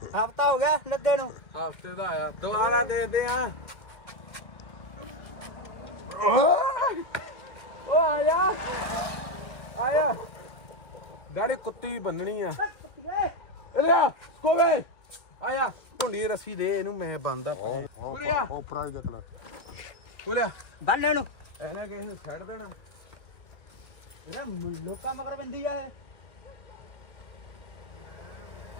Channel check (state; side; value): late; right; 1.8 ms